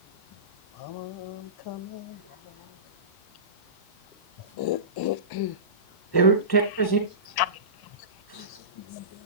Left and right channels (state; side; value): late; right; 1.1 ms